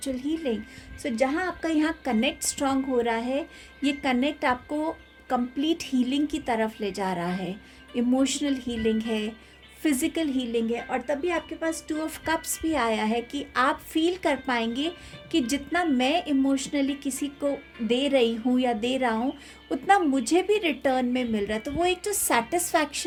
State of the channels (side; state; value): both; identical; correlation 1.00